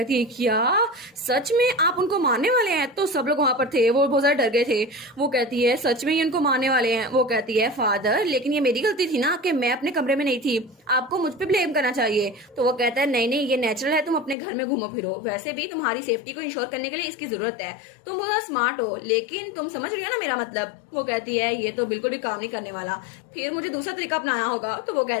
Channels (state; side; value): drops out; right; at 14.4 s